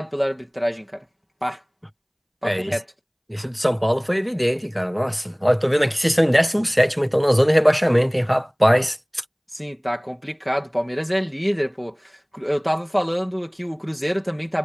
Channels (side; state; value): both; identical; correlation 1.00